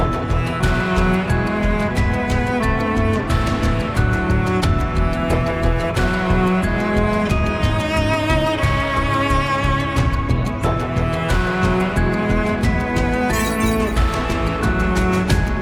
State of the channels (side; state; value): both; identical; correlation 1.00